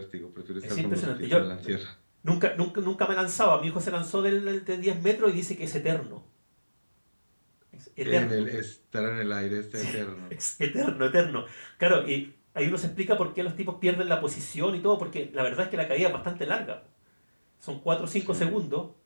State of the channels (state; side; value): inverted; both; correlation -1.00